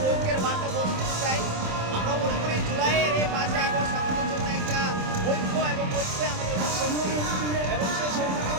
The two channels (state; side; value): late; left; 27 ms